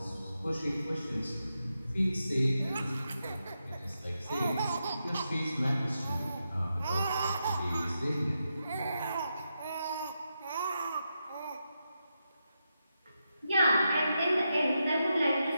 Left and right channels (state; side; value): inverted; both; correlation -0.86